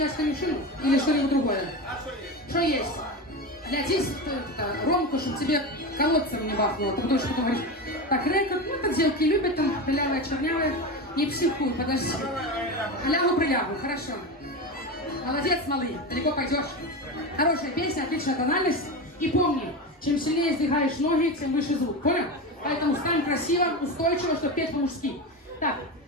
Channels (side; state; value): both; normal; correlation 0.21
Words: конюшину или что-нибудь другое. Что есть? Для здесь Ромку, чтобы тебе колодцем не бахнуло. Ты будешь что-то говорить. Так, рекорд, ну это девки любят, там пылявые, чернявые. Не психуй, подожди. Лягу-прилягу, хорошо. Молодец, малый, далеко пойдешь. Хорошая песня, отличная тональность. И помни, чем сильнее сдвигаешь ноги, тем выше звук, понял? Поэтому стань красиво, устойчиво, чтобы петь по-мужски. Так,